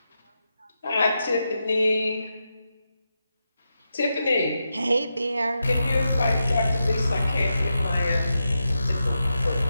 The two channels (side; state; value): both; inverted; correlation -0.88